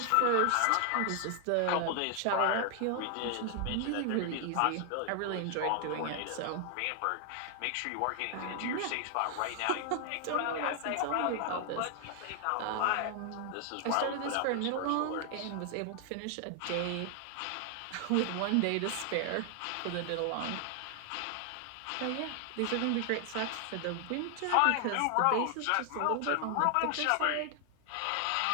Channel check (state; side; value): different; both; correlation 0.00